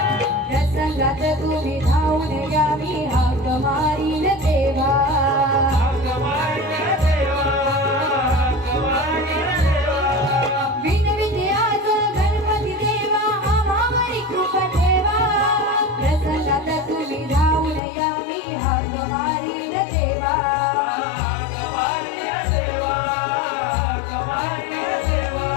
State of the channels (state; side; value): drops out; right; at 17.8 s